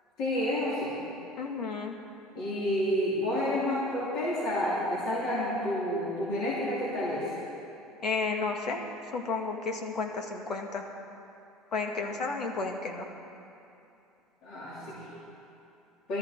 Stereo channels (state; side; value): normal; both; correlation 0.45